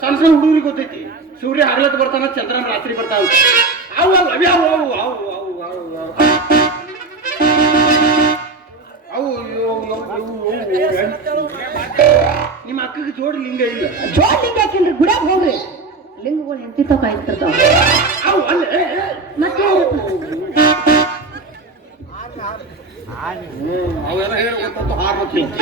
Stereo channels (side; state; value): left; quieter; 3.7 dB